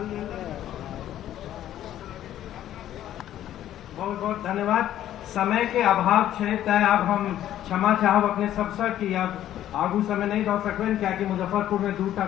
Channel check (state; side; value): quieter; right; 12.1 dB